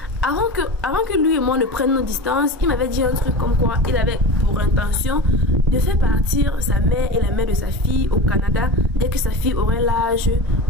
avant que lui et moi ne prenions nos distances, il m'avait dit un truc comme quoi il avait pour intention de faire partir sa mère et la mère de sa fille au Canada dès que sa fille aurait l'âge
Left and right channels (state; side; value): normal; both; correlation 0.29